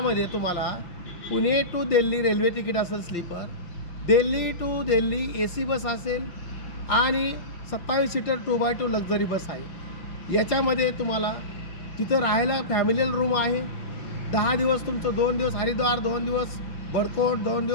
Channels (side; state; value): right; late; 5.8 ms